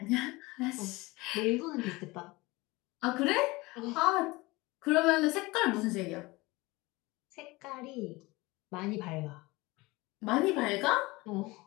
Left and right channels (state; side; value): quieter; right; 22.4 dB